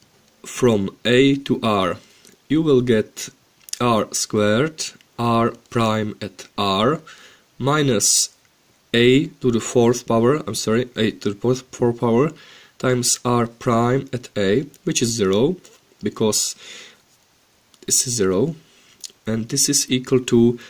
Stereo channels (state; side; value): identical; both; correlation 1.00